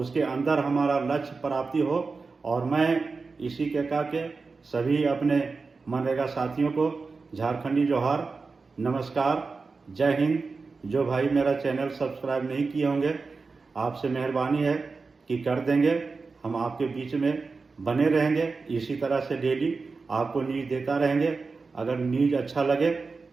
अंदर हमारा लक्ष्य प्राप्ति हो। और मैं इसी के कह के सभी अपने मनरेगा साथियों को झारखंडी जोहार, नमस्कार, जय हिंद। जो भाई मेरा चैनल सब्सक्राइब नहीं किए होंगे, आपसे मेहरबानी है कि कर देंगे। हम आपके बीच में बने रहेंगे, इसी तरह से डेली आपको न्यूज़ देता रहेंगे। अगर न्यूज़ अच्छा लगे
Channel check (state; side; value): quieter; left; 4.3 dB